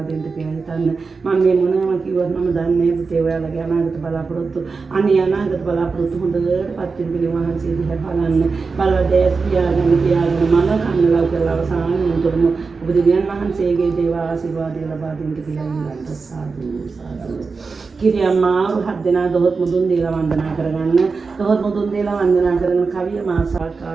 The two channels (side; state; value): left; quieter; 4.6 dB